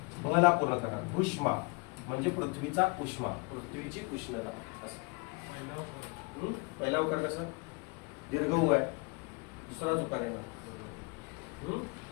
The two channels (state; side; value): quieter; right; 30.6 dB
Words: भला पूर्ण करणार. उष्मा म्हणजे पृथ्वीचा उष्मा, पृथ्वीची उष्णता असं. पहिला उकार कसं? दीर्घ ऊ आहे, दुसराच उकार येणार.